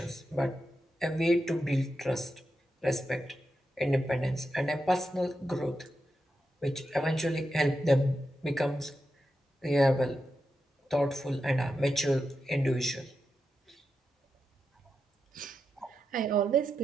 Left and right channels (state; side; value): normal; both; correlation 0.87